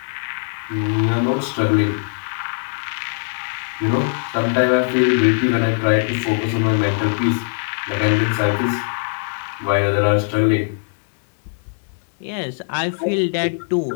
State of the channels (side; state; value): right; silent; digital silence